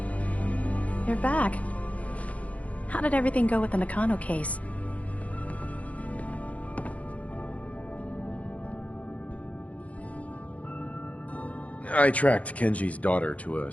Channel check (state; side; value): late; right; 0.066 ms